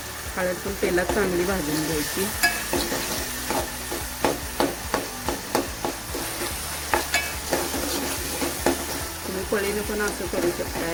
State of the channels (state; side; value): identical; both; correlation 1.00